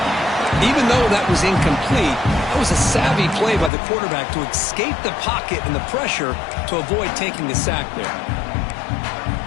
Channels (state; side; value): drops out; right; at 3.7 s